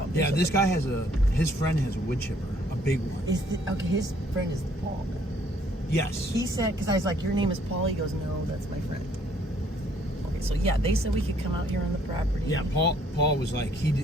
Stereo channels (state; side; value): normal; both; correlation 0.64